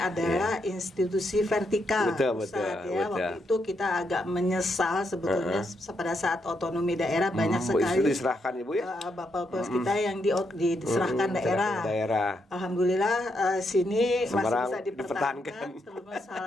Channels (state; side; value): normal; both; correlation 0.79